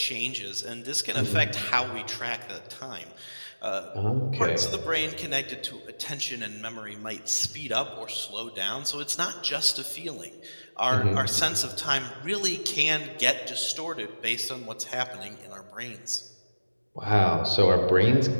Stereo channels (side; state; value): both; inverted; correlation -1.00